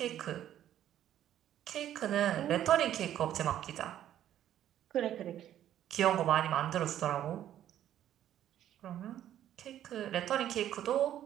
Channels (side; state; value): left; quieter; 11.5 dB